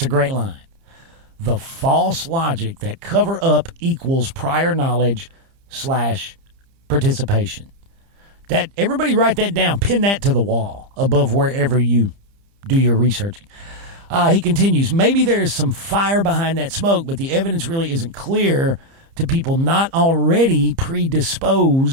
a great line. the false logic that cover up equals prior knowledge / participation. That everybody write that down, pin that to the wall above wherever you do your researching. He continues, maybe there is some fire behind that smoke, but the evidence really isn't clear to people not already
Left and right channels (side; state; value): left; late; 30 ms